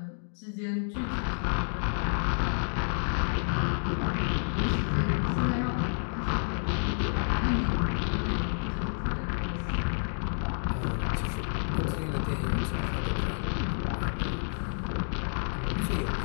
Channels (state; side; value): silent; right; digital silence